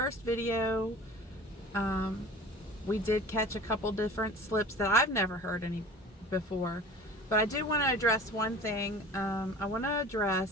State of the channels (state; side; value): normal; both; correlation 0.41